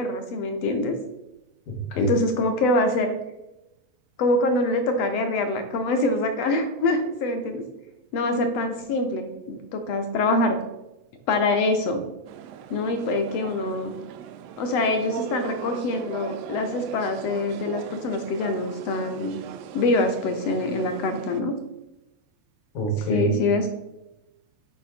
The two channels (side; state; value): right; late; 8.0 ms